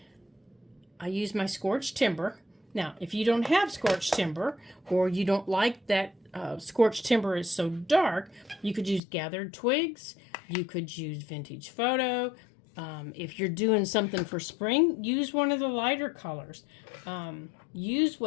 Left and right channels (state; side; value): drops out; right; at 9.0 s